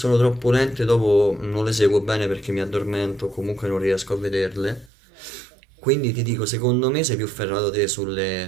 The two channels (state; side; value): drops out; left; at 4.9 s